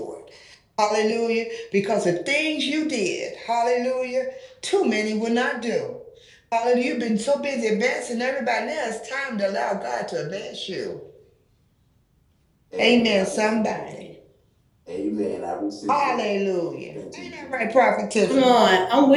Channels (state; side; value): identical; both; correlation 1.00